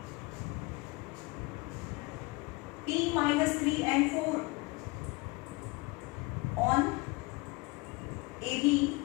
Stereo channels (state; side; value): quieter; right; 25.0 dB